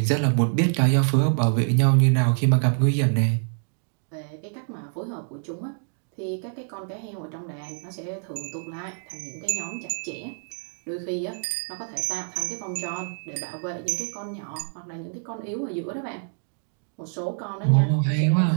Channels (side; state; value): left; silent; digital silence